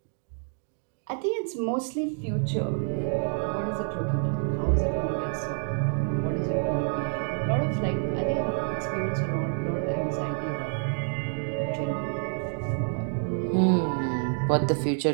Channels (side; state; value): left; silent; 57 dB below the other